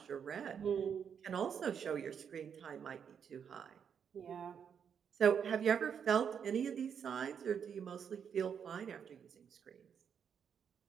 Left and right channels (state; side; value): quieter; left; 7.5 dB